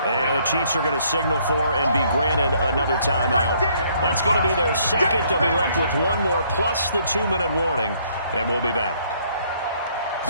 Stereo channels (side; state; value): both; inverted; correlation -0.65